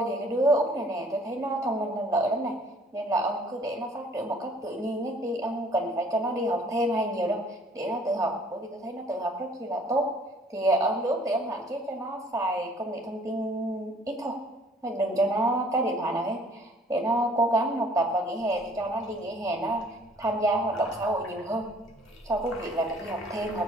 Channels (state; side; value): normal; both; correlation 0.57